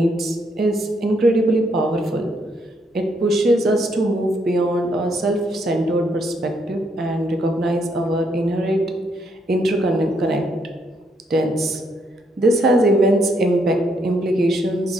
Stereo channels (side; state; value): both; normal; correlation 0.74